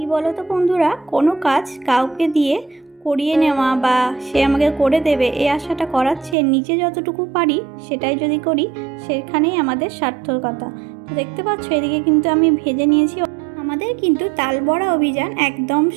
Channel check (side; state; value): left; drops out; at 6.4 s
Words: বলো তো বন্ধুরা, কোনো কাজ কাউকে দিয়ে করিয়ে নেওয়া বা সে আমাকে করে দেবে এই আশাটা করাচ্ছে, নিজে যতটুকু পারি সেটাই যদি করি সেখানেই আমাদের সার্থকতা। তো দেখতে পাচ্ছ এদিকে কিন্তু আমি ভেজে নিয়েছি। আমাদের কিন্তু তাল বড়া অভিযান একদম